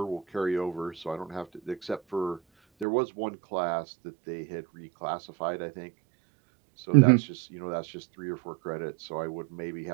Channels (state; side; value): drops out; left; at 2.9 s